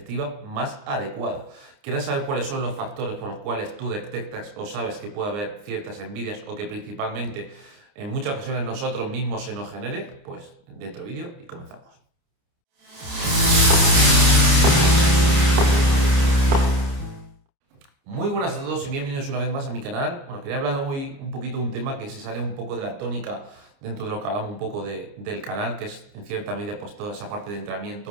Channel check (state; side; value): late; left; 29 ms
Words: más adecuada. ¿Quieres saber cuáles son los factores por los cuales tú detectas o sabes que puede haber ciertas envidias o que principalmente en muchas ocasiones nosotros mismos se nos genere? Pues dentro vídeo y comenzamos. Muy buenas a todos y bienvenidos una vez más a mi canal. Bueno, quería hablar hoy un poquito de un tema que se sale un poco de la tónica dentro de lo que hablamos un poco del canal, que es en cierta medida pues toda esa parte de